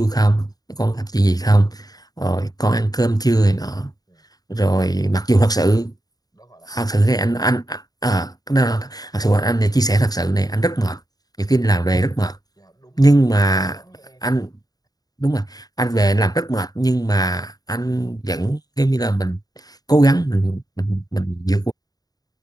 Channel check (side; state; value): right; late; 0.18 ms